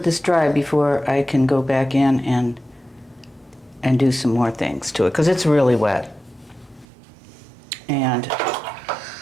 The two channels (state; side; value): drops out; left; at 6.9 s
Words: this dry before I can go back in and do some more things to it, because it's really wet. And